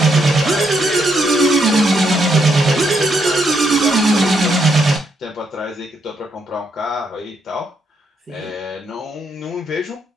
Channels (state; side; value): normal; both; correlation 0.77